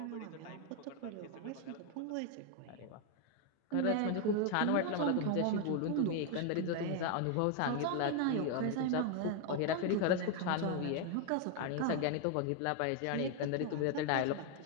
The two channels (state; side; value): different; both; correlation 0.01